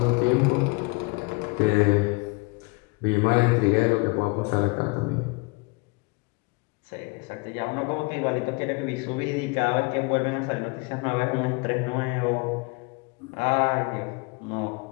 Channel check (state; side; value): quieter; right; 28.6 dB